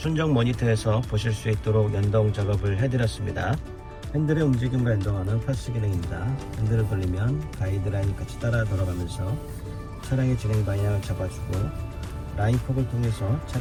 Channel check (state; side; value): identical; both; correlation 1.00